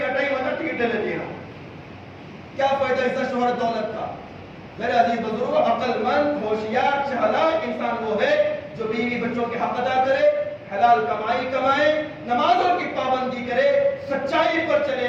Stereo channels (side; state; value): both; identical; correlation 1.00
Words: کا ٹائم ہوتا ٹکٹ لے لیتی ہیں. کیا فائدہ عزت، شہرت، دولت کا؟ میرے عزیز بزرگوں، عقل مند، ہوشیار، چالاک انسان وہ ہے جو بیوی بچوں کے حق ادا کرے، حلال کمائی کمائے، نمازوں کی پابندی کرے، سچائی پر چلے،